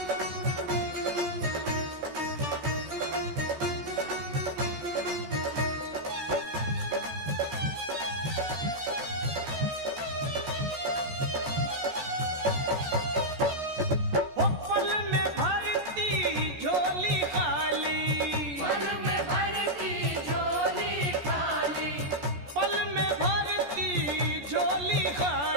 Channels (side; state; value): left; late; 14 ms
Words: ओ पल में भरती झोली खाली, पल में भरती झोली खाली, पल में भरती झोली